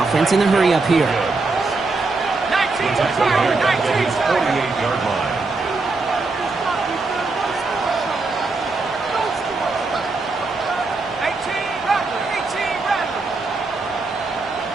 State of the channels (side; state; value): left; quieter; 3.7 dB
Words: in a hurry up here. 19 Tiger, 19 Tiger. 48-yard line. 18 Rattler, 18 Rattler.